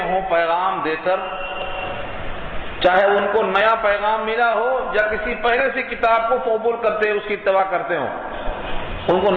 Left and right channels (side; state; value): both; identical; correlation 1.00